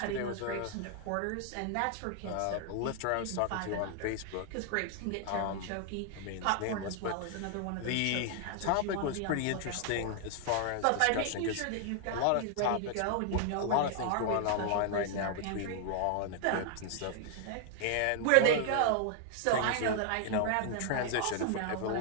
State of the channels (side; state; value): both; different; correlation 0.00